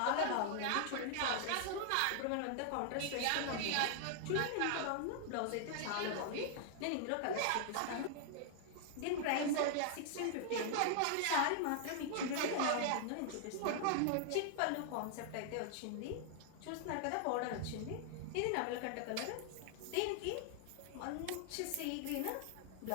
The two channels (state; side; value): different; both; correlation 0.00